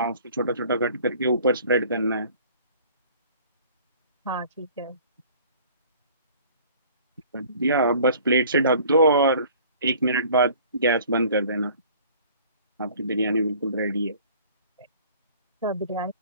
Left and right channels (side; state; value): both; inverted; correlation -0.51